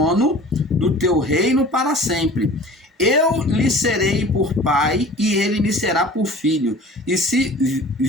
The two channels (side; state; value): both; normal; correlation 0.43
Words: do teu reino para sempre. Eu lhe serei por pai, e ele me será por filho. E se